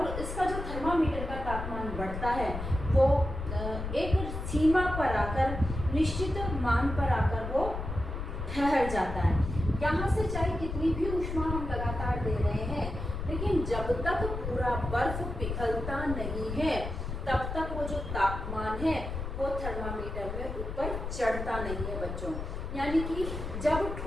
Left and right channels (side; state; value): left; noise; rumble, 6 dB below the sound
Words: इसका जो थर्मामीटर का तापमान बढ़ता है वो एक सीमा पर आकर, निश्चित मान पर आकर वो ठहर जाता है। यहाँ से चाहे कितनी भी ऊष्मा हम लगातार दे रहे हैं, लेकिन जब तक पूरा बर्फ पिघलता नहीं है तब तक वो जो तापमान है वो थर्मामीटर में ऊपर चढ़ता नहीं है बच्चों। यानी कि जब